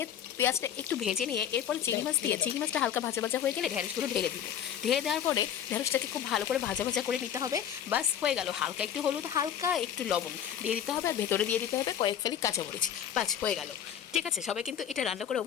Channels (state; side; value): quieter; right; 9.5 dB